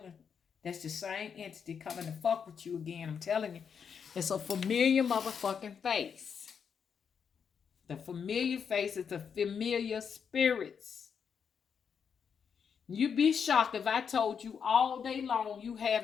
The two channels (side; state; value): right; quieter; 6.9 dB